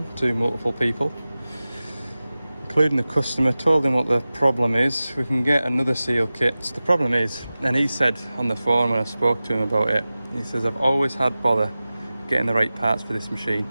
to multiple people, including the customer. Told him what the problem is. We can get another seal kit. So the problem is, and he said on the phone when I spoke to him about it, he says, I've always had bother getting the right parts for this machine,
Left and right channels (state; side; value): inverted; both; correlation -0.96